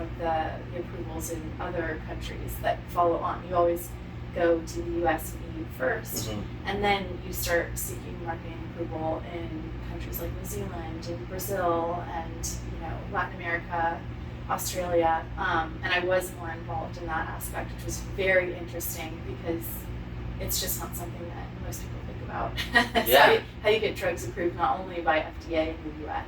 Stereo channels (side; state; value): both; identical; correlation 1.00